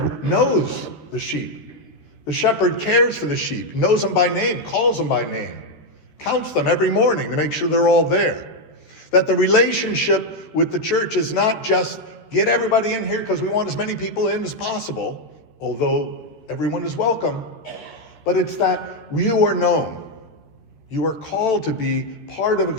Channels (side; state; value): right; late; 13 ms